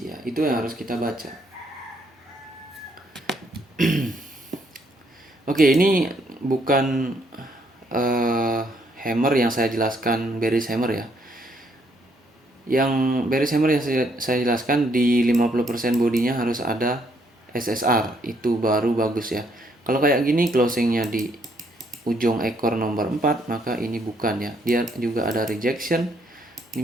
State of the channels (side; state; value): both; normal; correlation 0.70